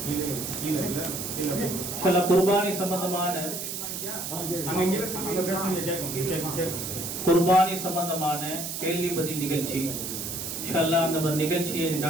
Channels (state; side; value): noise; right; hiss, 5 dB below the sound